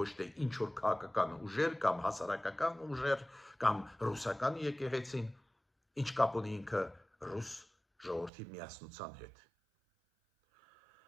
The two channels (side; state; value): left; drops out; at 8.3 s